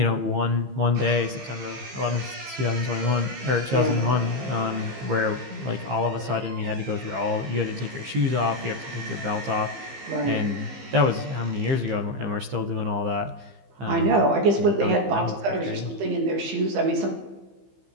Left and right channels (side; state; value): left; late; 15 ms